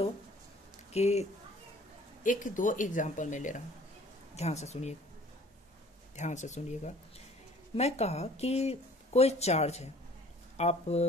कि एक दो एग्जाम्पल मैं ले रहा हूँ, ध्यान से सुनिए, ध्यान से सुनिएगा। मैं कहा कि कोई चार्ज है, आप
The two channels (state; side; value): normal; both; correlation 0.52